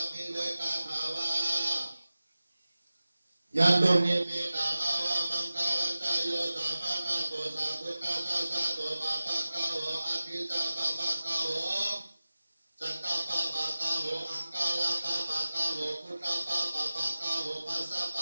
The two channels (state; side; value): inverted; both; correlation -0.96